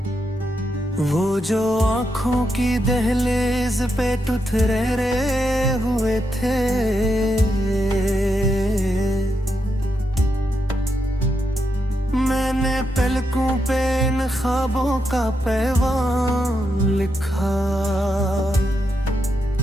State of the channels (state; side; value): normal; both; correlation 0.83